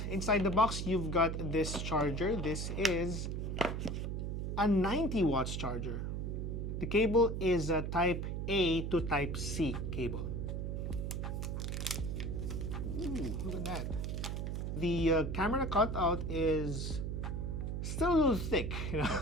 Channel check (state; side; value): noise; right; hum, 2 dB below the sound